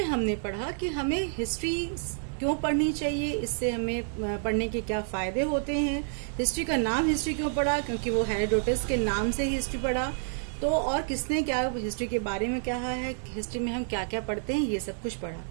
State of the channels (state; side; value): silent; left; digital silence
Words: हमने पढ़ा कि हमें हिस्ट्री क्यों पढ़नी चाहिए, इससे हमें पढ़ने के क्या फायदे होते हैं, हिस्ट्री का नाम हिस्ट्री क्यों पढ़ा, क्योंकि वो हेरोडोटस के नाम से ही हिस्ट्री पढ़ा। तो और किसने क्या हिस्ट्री के बारे में कहा है, हिस्ट्री में हम क्या क्या पढ़ते हैं, ये सब कुछ पढ़ा।